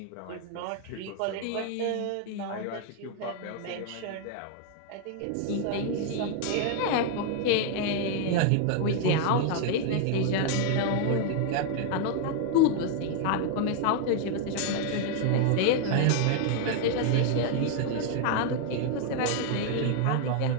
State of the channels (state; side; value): different; both; correlation 0.00